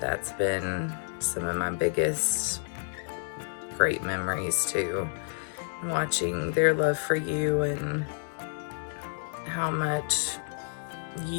been some of my biggest great memories too. And watching their love for you and how much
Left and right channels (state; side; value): silent; right; digital silence